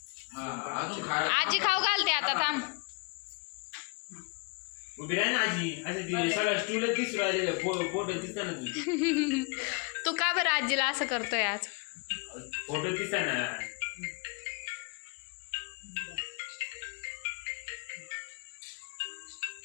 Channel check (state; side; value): quieter; right; 33.0 dB